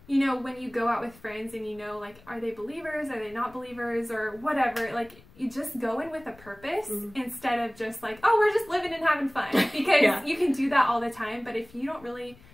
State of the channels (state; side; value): noise; left; rumble, 24 dB below the sound